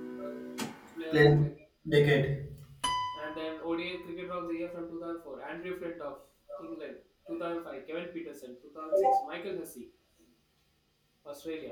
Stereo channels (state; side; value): identical; both; correlation 1.00